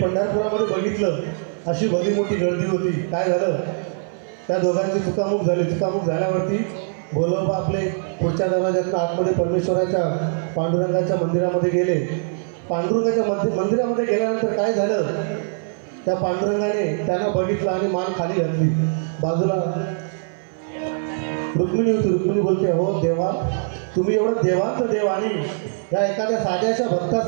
बघितलं अशी भली मोठी गर्दी होती. काय झालं, त्या दोघांची चुकामुक झाली. चुकामुक झाल्यावरती गोलोबा आपले पुढच्या दरवाज्यातून आतमध्ये परमेश्वराच्या पांडुरंगाच्या मंदिरामध्ये गेले. पांडुरंगाच्या मंदिरामध्ये गेल्यानंतर काय झालं, त्या पांडुरंगाने त्यांना बघितलं आणि मान खाली घातली. बाजूला रुक्मिणी होती. रुक्मिणी बोलते, हो देवा, तुम्ही एवढं देवांचं देव आणि या एखाद्या साध्याच्या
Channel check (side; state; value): left; silent; 60 dB below the other